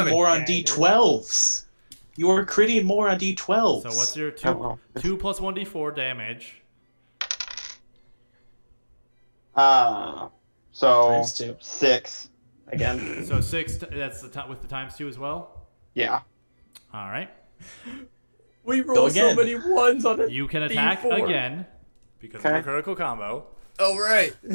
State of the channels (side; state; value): both; inverted; correlation -1.00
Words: critting a more on dagger. D12s? You are critting more on D12s. So what's your Oh, well. 2 plus 1d4 damage? So Times 2. 6 again. So 6. That's with the times 2 as well. Yeah. All right. We roll so again. many ones on it. You can attack D4. again because of Okay. a critical combo. Oh right.